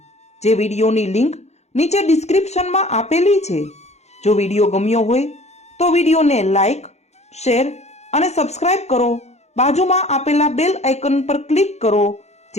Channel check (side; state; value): right; late; 0.32 ms